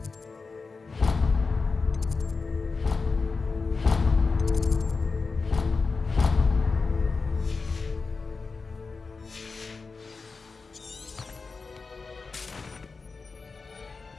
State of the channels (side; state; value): right; quieter; 4.4 dB